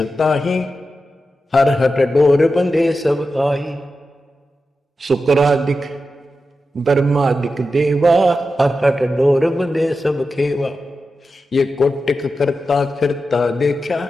ताही, हर हट डोर बंधे सब आही। शुक्रादिक ब्रह्मादिक देवा, हर हट डोर बंधे सब खेवा। ये कोटिक करता फिरता देखा,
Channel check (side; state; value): both; normal; correlation 0.90